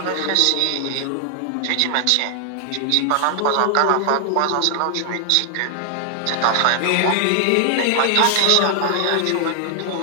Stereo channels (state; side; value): different; both; correlation 0.00